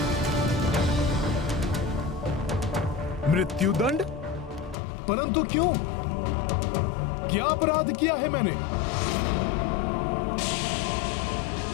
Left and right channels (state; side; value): drops out; right; at 4.8 s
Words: मृत्युदंड? परंतु क्यों? क्या अपराध किया है मैंने?